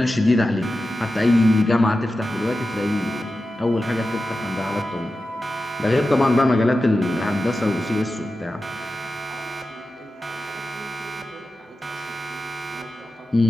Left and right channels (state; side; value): normal; both; correlation 0.93